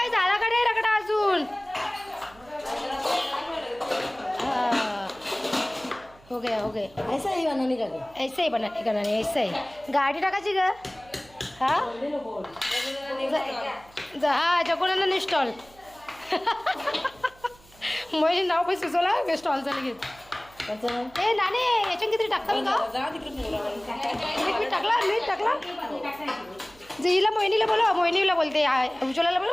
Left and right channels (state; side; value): noise; right; hum, 26 dB below the sound